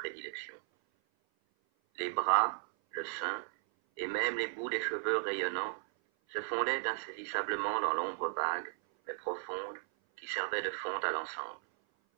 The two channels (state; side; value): silent; left; 54 dB below the other